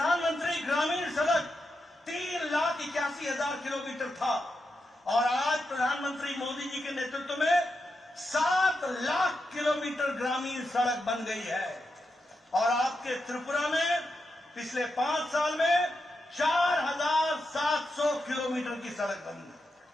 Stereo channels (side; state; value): both; normal; correlation 0.87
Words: ग्रामीण सड़क 3,81,000 किलोमीटर था और आज प्रधानमंत्री मोदी जी के नेतृत्व में 7 लाख किलोमीटर ग्रामीण सड़क बन गई है। और आपके त्रिपुरा में पिछले 5 साल में 4,700 किलोमीटर की सड़क बनी है।